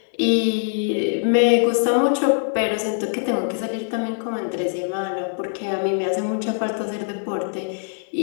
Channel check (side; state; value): right; silent; 64 dB below the other